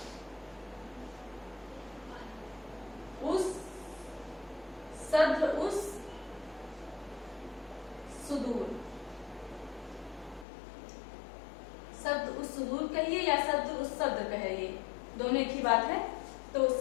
उस सुदूर कहिए या सद्र उस सद्र कहिए, दोनों एक ही बात है। तो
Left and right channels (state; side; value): drops out; right; at 10.5 s